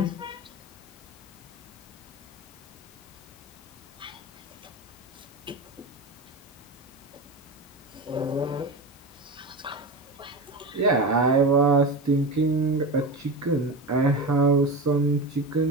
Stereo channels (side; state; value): both; normal; correlation 0.24